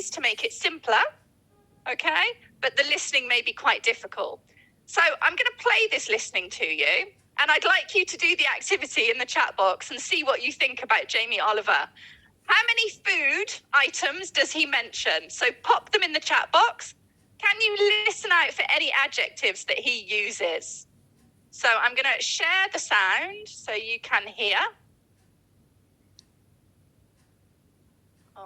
to make it simpler, okay? But the listening may be quite difficult. So I'm going to play this listening to you, and I'd like you to do the activity in the chat box and see what you think about Jamie Oliver. How many food items does he mention? So pop them in the chat box. Can you listen out for any adjectives that he uses? So I'm going to share the sound so you can hear.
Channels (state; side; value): identical; both; correlation 1.00